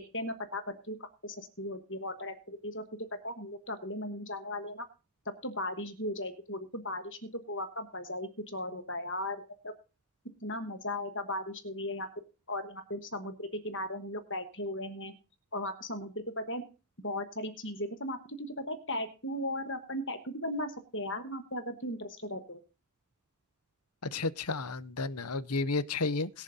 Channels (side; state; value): both; normal; correlation -0.16